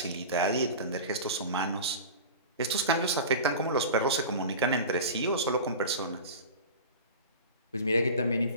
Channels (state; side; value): inverted; both; correlation -0.32